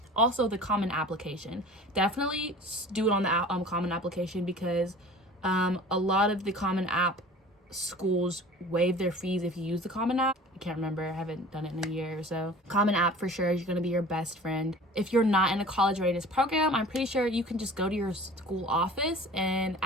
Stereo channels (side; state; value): both; normal; correlation 0.43